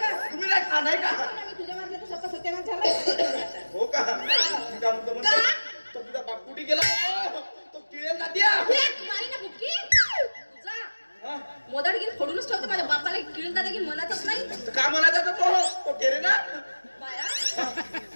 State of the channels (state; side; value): inverted; both; correlation -1.00